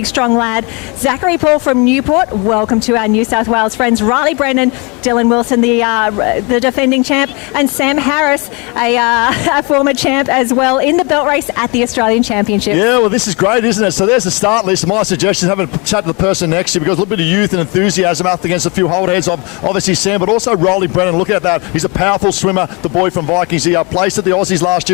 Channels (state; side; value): quieter; right; 29.8 dB